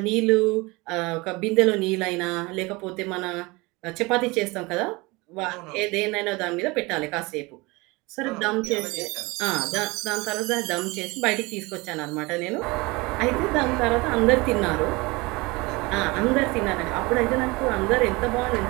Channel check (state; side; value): quieter; left; 24.1 dB